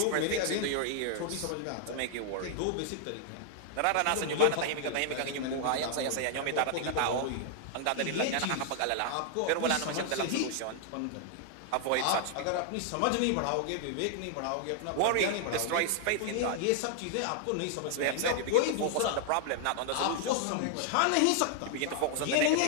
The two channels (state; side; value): different; both; correlation 0.00